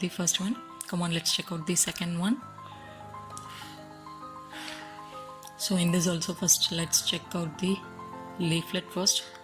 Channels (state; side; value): identical; both; correlation 1.00